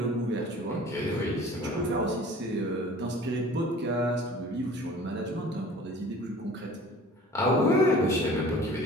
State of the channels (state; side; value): normal; both; correlation 0.46